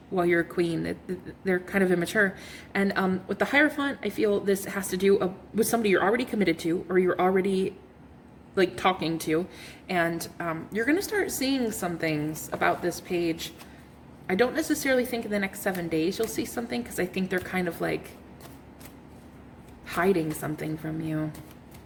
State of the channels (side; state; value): both; identical; correlation 1.00